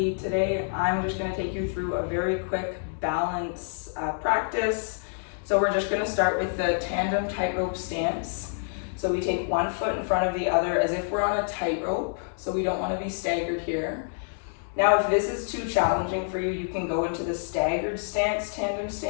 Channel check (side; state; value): right; silent; 60 dB below the other